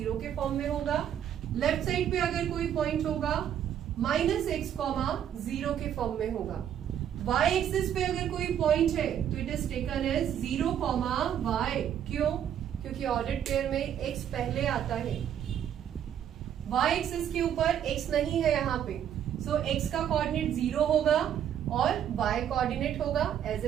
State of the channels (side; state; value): left; quieter; 9.7 dB